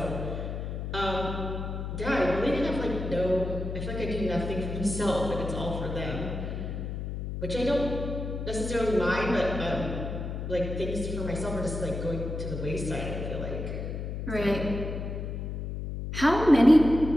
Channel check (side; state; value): left; noise; hum, 5 dB below the sound